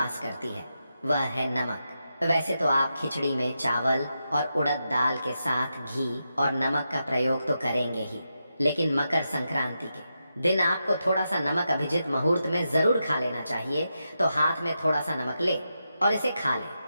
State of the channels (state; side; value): inverted; both; correlation -0.87